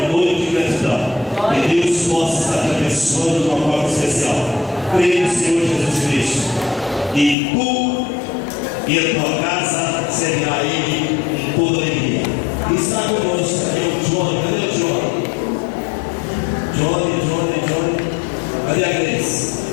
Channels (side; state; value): right; drops out; at 7.4 s